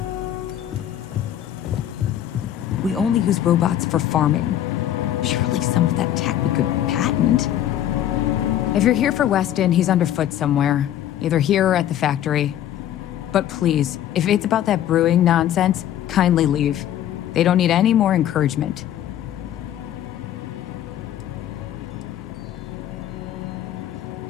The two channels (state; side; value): quieter; right; 11.4 dB